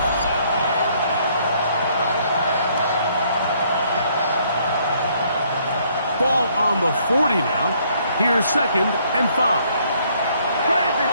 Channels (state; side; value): inverted; both; correlation -0.66